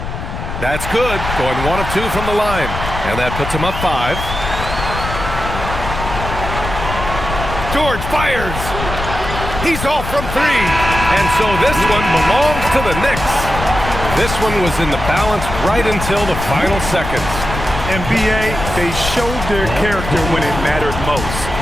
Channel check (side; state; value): left; noise; rumble, 6 dB below the sound